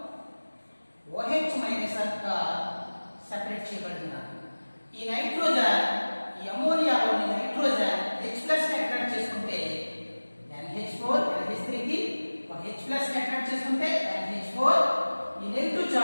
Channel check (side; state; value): both; inverted; correlation -1.00